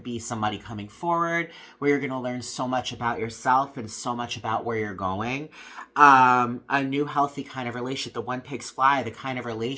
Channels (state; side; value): identical; both; correlation 1.00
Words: be somebody coming forward where you're going to learn so much about yourself and so much about where you're going. A new healthy kind of relationship, the one pigs fly, the kind of